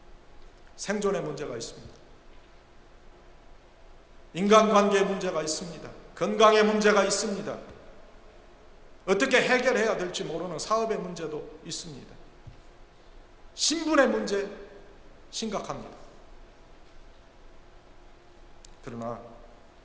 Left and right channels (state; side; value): identical; both; correlation 1.00